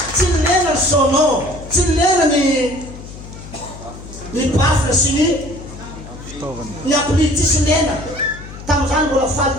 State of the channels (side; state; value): left; noise; hum, 14 dB below the sound